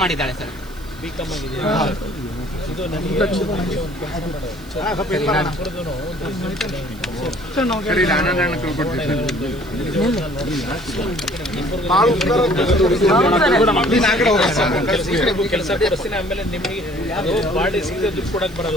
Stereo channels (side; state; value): right; noise; hiss, 23 dB below the sound